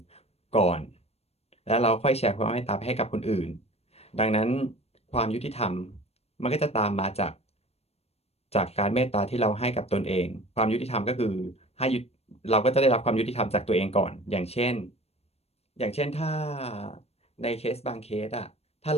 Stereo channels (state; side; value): late; right; 0.30 ms